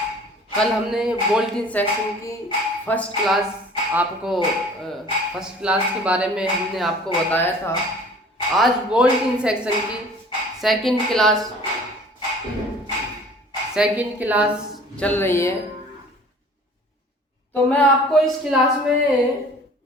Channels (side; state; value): both; normal; correlation 0.49